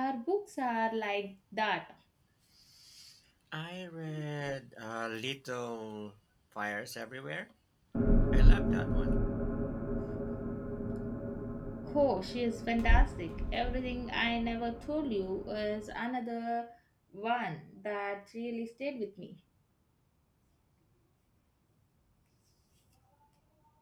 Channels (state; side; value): identical; both; correlation 1.00